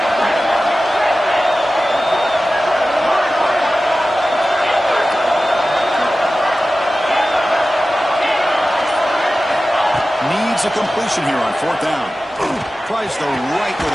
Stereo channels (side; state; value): both; normal; correlation 0.95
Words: Needs a completion here on fourth down. Tries the right